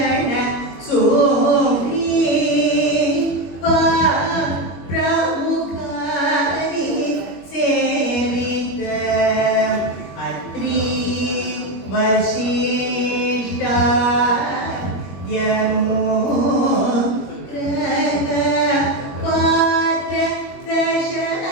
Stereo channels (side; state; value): right; late; 21 ms